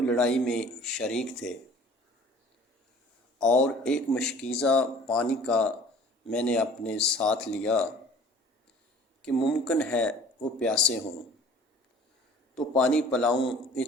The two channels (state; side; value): normal; both; correlation 0.48